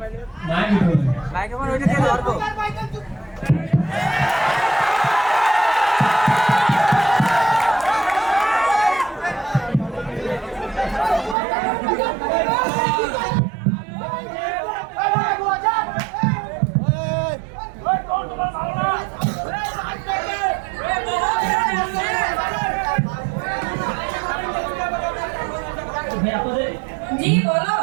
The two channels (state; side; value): drops out; left; at 11.4 s